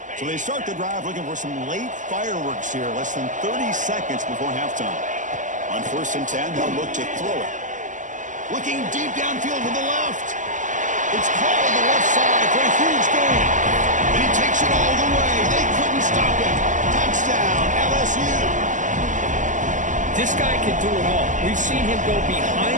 So they start the drive looking for some late fireworks here, less than 30 seconds before halftime. On 1st and 10, they'll look to throw it. Looking deep downfield to the left. It's called on the left side for a huge gain. And he takes it all the way. They couldn't stop him. Touchdown, LSU. This guy can do it all. We've seen him go behind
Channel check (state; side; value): late; left; 0.37 ms